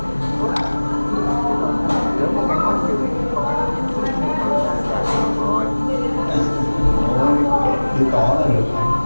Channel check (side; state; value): both; inverted; correlation -1.00